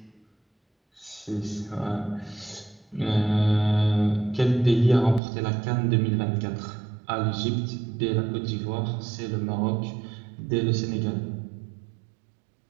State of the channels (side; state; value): left; drops out; at 5.2 s